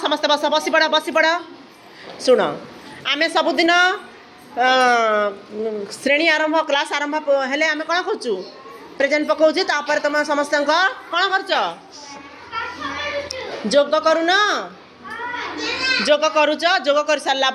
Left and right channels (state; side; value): identical; both; correlation 1.00